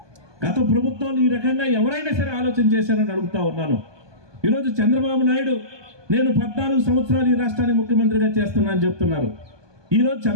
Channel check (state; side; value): late; left; 1.2 ms